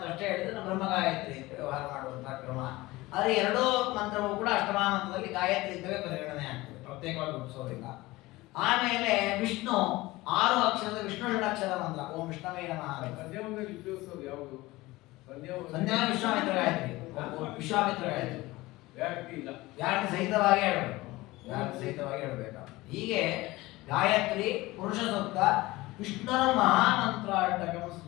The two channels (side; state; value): right; quieter; 19.8 dB